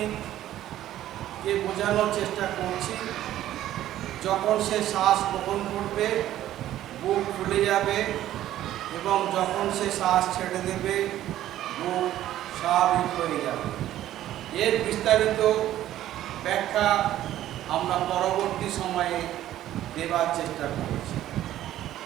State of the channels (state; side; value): quieter; left; 13.1 dB